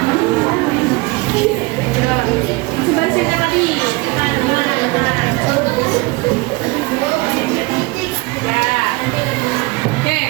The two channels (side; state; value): left; quieter; 24.6 dB